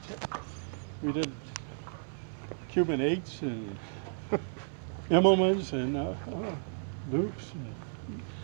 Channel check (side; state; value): left; silent; 56 dB below the other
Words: we did Cuban 8s and Immelmans and loops and